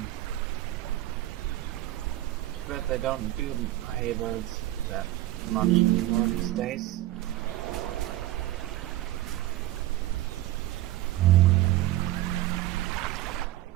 But they don't do hay bales that much anymore these days.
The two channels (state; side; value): quieter; left; 15.7 dB